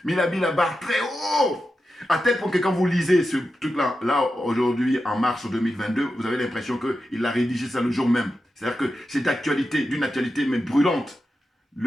mais il a mis la barre très haut. À tel point que quand vous lisez ce truc-là, là, aujourd'hui, en mars 2022, vous avez l'impression qu'il a rédigé ça le jour même. C'est-à-dire que c'est d'actualité, d'une actualité même brûlante.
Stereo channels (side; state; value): both; normal; correlation 0.90